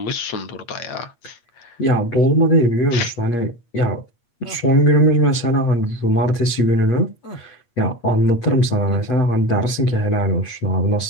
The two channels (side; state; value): right; late; 8.5 ms